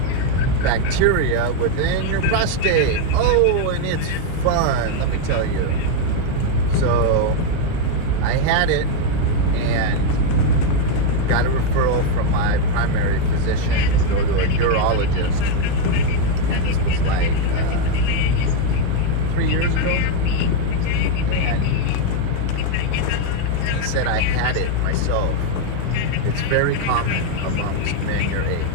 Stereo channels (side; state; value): both; different; correlation 0.01